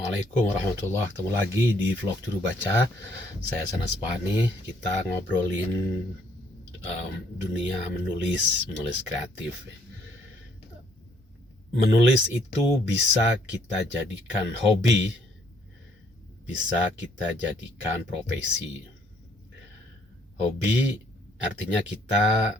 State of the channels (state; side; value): normal; both; correlation 0.66